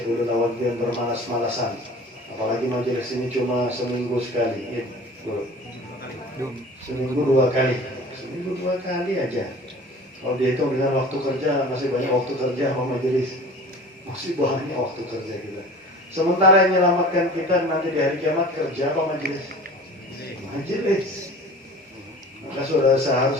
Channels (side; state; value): both; normal; correlation 0.42